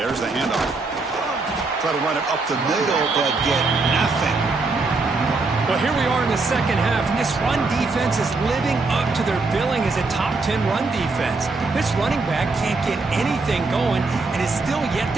There's the handoff. Try to run it up the middle, but get nothing. Well, here we are in the second half, and this run defense is living up to their billing as a top 10 run defense. This running back can't get anything going and is still yet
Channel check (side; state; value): left; quieter; 3.7 dB